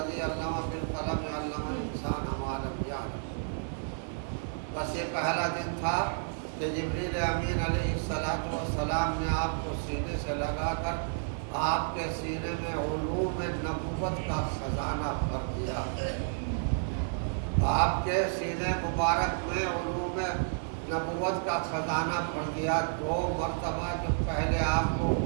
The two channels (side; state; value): left; silent; digital silence